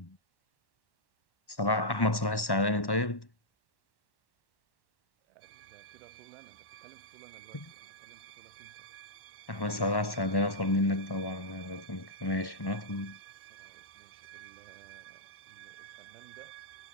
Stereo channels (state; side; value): late; right; 1.1 ms